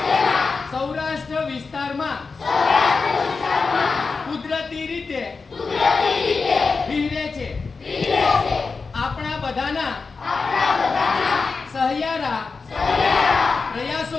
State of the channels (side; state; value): right; quieter; 4.5 dB